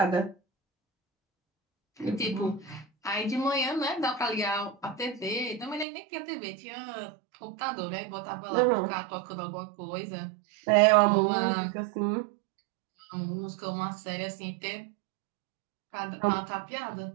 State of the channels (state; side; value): drops out; left; at 5.9 s